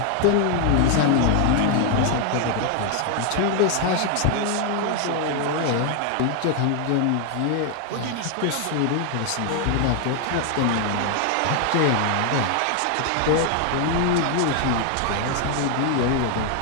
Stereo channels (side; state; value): both; different; correlation 0.00